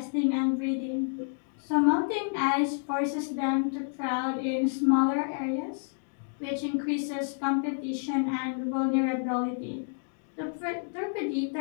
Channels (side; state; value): right; silent; digital silence